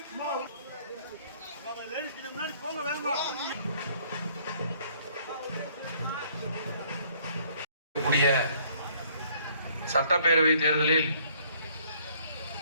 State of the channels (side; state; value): both; inverted; correlation -0.61